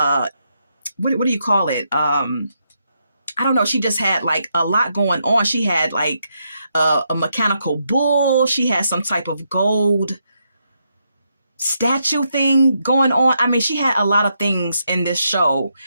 what do you call it? I don't know. She just had like a lot going on. She had like a mechanical bull. She had some type of gold statue thing going on. I mean, she had a lot of things in this show.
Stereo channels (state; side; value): inverted; both; correlation -0.80